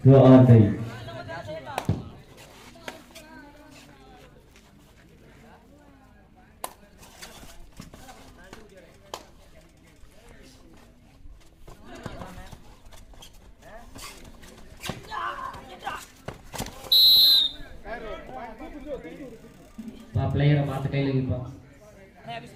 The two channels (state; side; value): identical; both; correlation 1.00